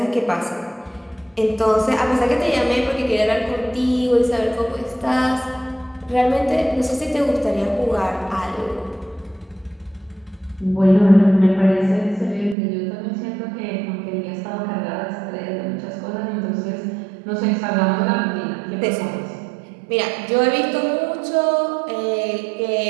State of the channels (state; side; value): drops out; left; at 12.6 s